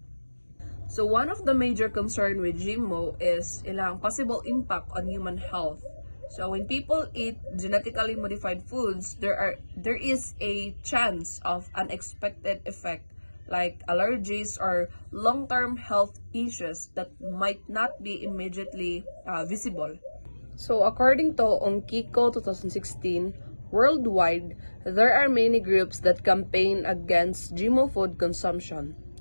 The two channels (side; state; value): both; inverted; correlation -1.00